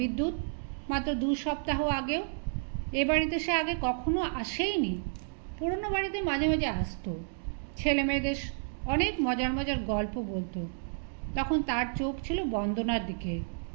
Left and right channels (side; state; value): left; silent; digital silence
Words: মাত্র 2 সপ্তাহ আগেও? এ বাড়িতে সে আগে কখনো আসেইনি। পুরনো বাড়িতে মাঝে মাঝে আসতো, ছেলে মেয়েদের অনেক মজার মজার গল্প বলতো। তখন তার চোখ ছিল বন্দনার দিকে।